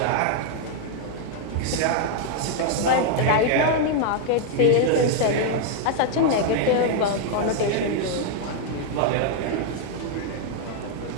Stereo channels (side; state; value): both; different; correlation 0.00